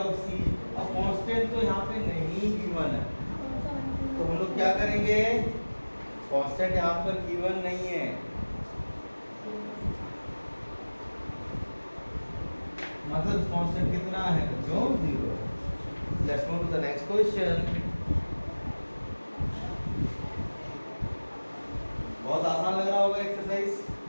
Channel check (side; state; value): both; inverted; correlation -1.00